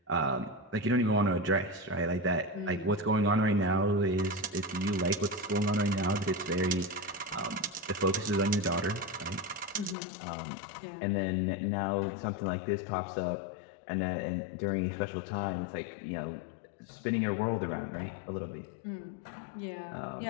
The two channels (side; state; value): right; drops out; at 10.0 s